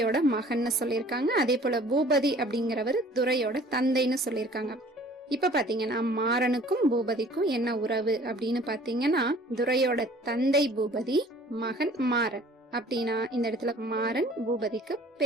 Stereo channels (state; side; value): normal; both; correlation 0.51